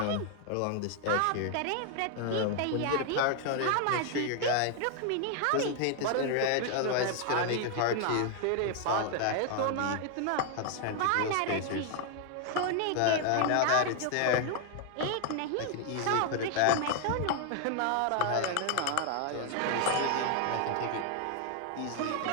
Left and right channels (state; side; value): different; both; correlation 0.00